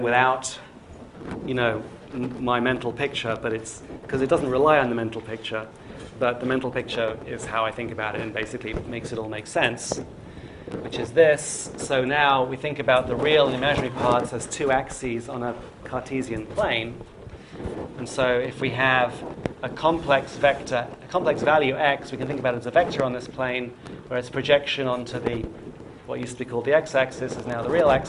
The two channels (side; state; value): both; identical; correlation 1.00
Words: without, my mental picture, but it's because it doesn't rely on the mental picture. But the mental picture is how I think about it and basically makes it all make sense, which is this. So now we think about the real and imaginary parts as two axes on a Cartesian plane. And so if we have a complex value x, we can think about it as a vector on this plane, where its projection onto what used to be called the x-axis is now the real